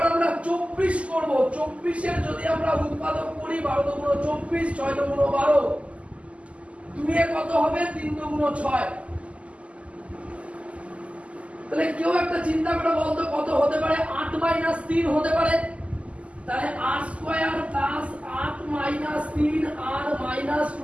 আমরা 24 করব। 24 এর যদি আমরা উৎপাদক করি 12 দুগুণ 24, 6 দুগুণ 12, 2 এ কত হবে 3 দুগুণ 6। তাহলে কেউ একটা চিন্তা করে বলতো কত হতে পারে? 8 - 3 হতে পারে। তাহলে r² plus 8 - 3 r minus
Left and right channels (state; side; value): late; left; 0.061 ms